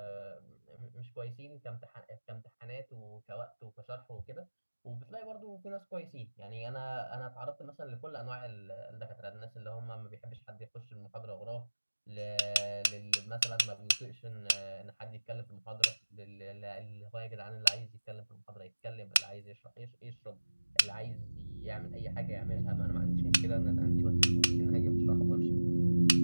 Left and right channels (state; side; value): inverted; both; correlation -1.00